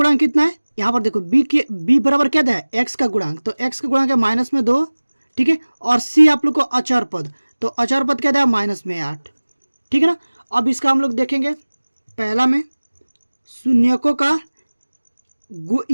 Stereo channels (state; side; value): inverted; both; correlation -1.00